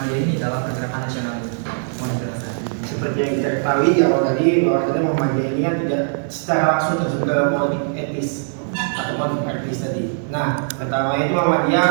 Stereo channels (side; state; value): left; silent; digital silence